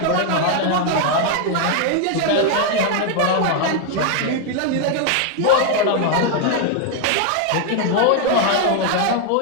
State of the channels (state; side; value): different; both; correlation 0.00